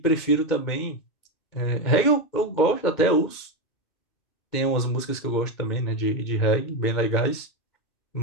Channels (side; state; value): right; late; 2.2 ms